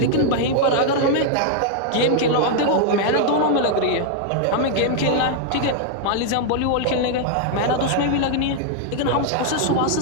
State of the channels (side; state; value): both; different; correlation 0.00